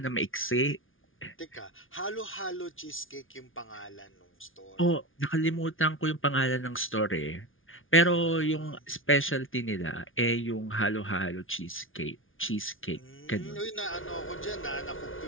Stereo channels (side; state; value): right; late; 0.58 ms